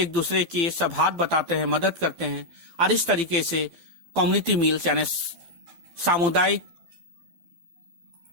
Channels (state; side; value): late; left; 12 ms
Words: दूसरे की सब हाथ बताते हैं, मदद करते हैं, और इस तरीके से कम्युनिटी मील्स यानी सामुदायिक